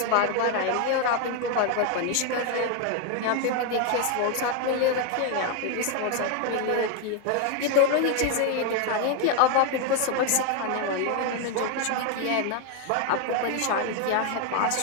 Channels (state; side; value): different; both; correlation 0.01